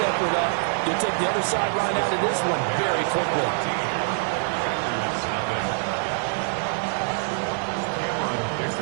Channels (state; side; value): silent; left; 62 dB below the other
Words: effort up, you'll take the other sideline out of this one very quickly.